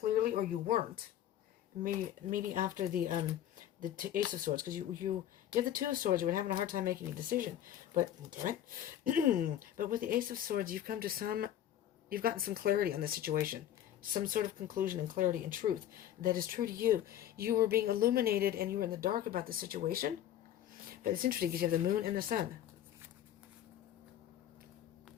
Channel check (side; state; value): right; quieter; 11.3 dB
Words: or you weren't. Maybe after the Ace of Swords, because you give the Two of Swords, you were having a hard time making a decision. But damn it, but with the Ace of Swords, you've gotten some clarity on the situation, some sort of conclusion and clarity and truth that is true to you. You were being illuminated, and you were in the dark about the situation. But it's interesting because you have the Moon and the Sun.